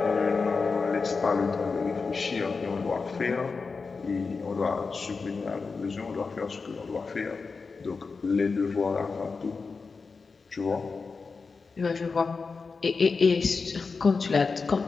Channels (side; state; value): right; quieter; 4.6 dB